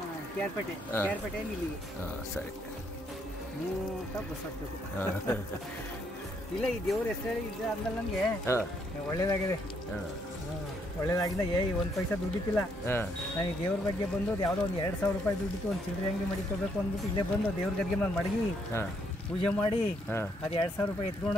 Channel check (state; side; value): normal; both; correlation 0.72